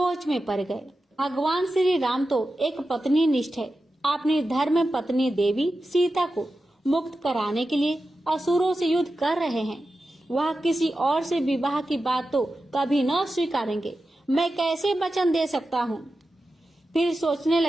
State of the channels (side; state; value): both; normal; correlation 0.92